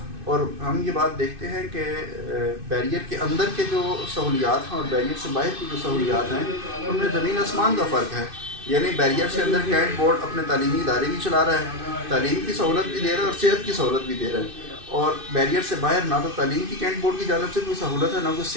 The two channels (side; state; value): left; late; 2.6 ms